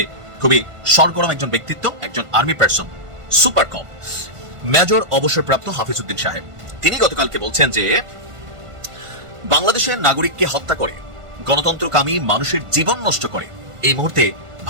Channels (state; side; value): late; left; 1.5 ms